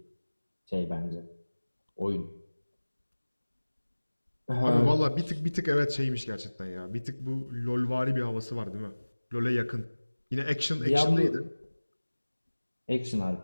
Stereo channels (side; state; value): both; inverted; correlation -1.00